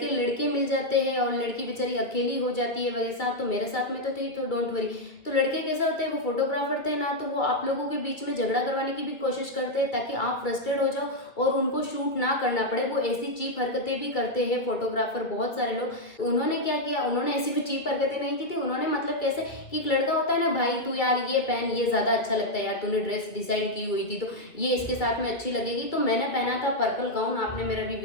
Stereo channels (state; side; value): late; right; 1.9 ms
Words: लड़के मिल जाते हैं और लड़की बेचारी अकेली हो जाती है वैसा, तो मेरे साथ में तो थी, तो डोंट वरी। तो लड़के कैसे होते हैं, वो फोटोग्राफर थे ना, तो वो आप लोगों के बीच में झगड़ा करवाने की भी कोशिश करते हैं ताकि आप फ्रस्ट्रेट हो जाओ और उनको शूट ना करना पड़े। वो ऐसी चीप हरकतें भी करते हैं फोटोग्राफर, बहुत सारे लोग। तो उन्होंने क्या किया, उन्होंने ऐसी कोई चीप हरकतें नहीं की थी, उन्होंने मतलब कैसे कि एक लड़का होता है ना, भाई तू यार ये पहन, ये ज़्यादा अच्छा लगता है यार, तूने ड्रेस डिसाइड की हुई थी तो ये इसके साथ में अच्छी लगेगी। तो मैंने पहना था पर्पल गाउन, आपने मेरा भी